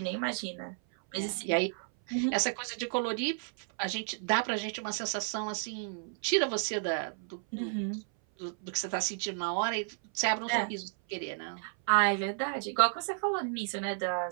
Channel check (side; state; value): left; silent; 56 dB below the other